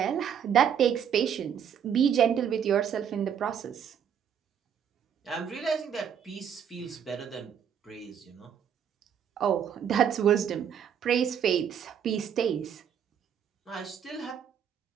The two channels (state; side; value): quieter; left; 8.3 dB